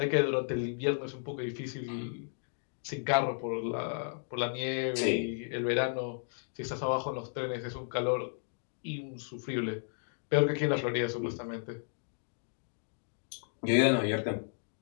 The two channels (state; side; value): silent; right; digital silence